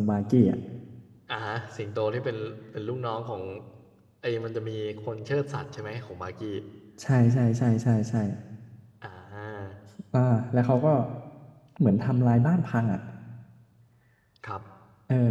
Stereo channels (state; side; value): identical; both; correlation 1.00